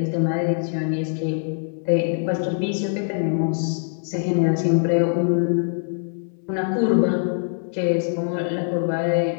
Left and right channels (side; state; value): right; silent; 63 dB below the other